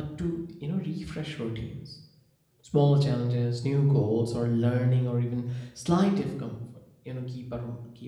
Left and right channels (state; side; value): identical; both; correlation 1.00